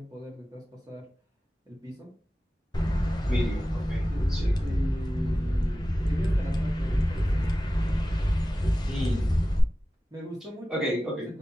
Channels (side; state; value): both; normal; correlation 0.96